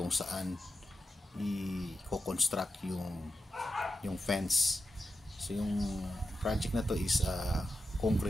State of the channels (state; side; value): normal; both; correlation 0.90